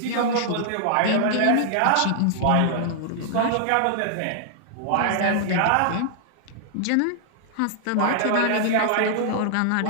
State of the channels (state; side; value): different; both; correlation -0.01